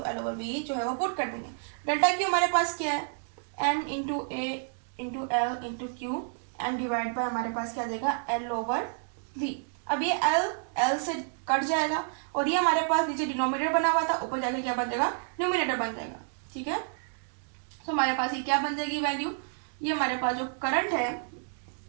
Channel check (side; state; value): left; silent; digital silence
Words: L over V जो है वो पुट कर देंगे। डेल्टा क्यू हमारे पास क्या है, n into A into L into q and divide by हमारे पास क्या देगा, एल ओवर वी। अब ये एल से कट जाएगा और ये हमारे पास नीचे डिनोमिनेटर बना हुआ था, ऊपर जाके क्या बन जाएगा, न्यूमिनेटर बन जाएगा। ठीक है, तो हमारे पास ये क्या बन जाएगी वैल्यू, ये हमारे पास जो करंट है,